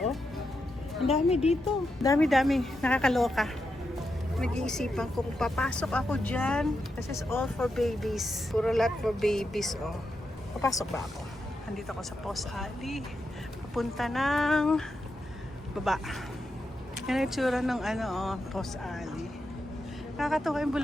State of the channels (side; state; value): both; normal; correlation 0.86